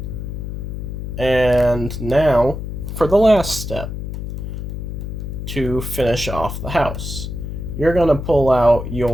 And now for the last step, to finish off the house, you're going to pull out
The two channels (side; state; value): left; noise; hum, 6 dB below the sound